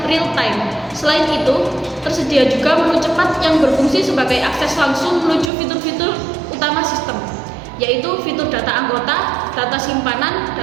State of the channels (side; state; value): left; drops out; at 5.5 s